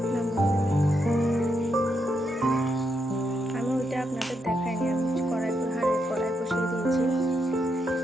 নামিয়ে নেব। আমি ওইটা আপনাদের দেখাইনি, আমি কড়াই বসিয়ে দিয়েছি।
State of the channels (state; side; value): normal; both; correlation 0.81